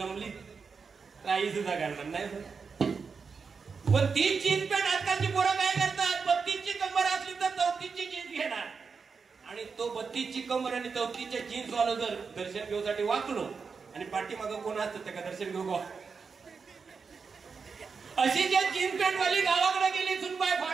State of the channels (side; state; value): left; quieter; 5.3 dB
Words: राई सुद्धा घालणार नाही. पण ती जीन्स पॅन्ट आजकालची पोरं काय करतात 32ची कंबर असली तर 34ची जीन्स घेणार आणि तो 32ची कंबर आणि 34च्या जीन्स वाला जर दर्शन घेऊसाठी वाकलो आणि पाठीमागं कोण असतं त्या दर्शन घेऊ गो. अशी ज्या जीन्स पॅन्ट वाली गावाकडे गेली सुनबाई